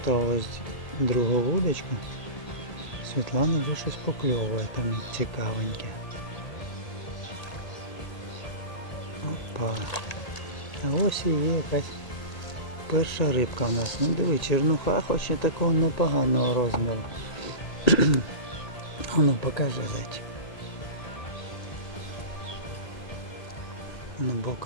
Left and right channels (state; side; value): late; right; 1.8 ms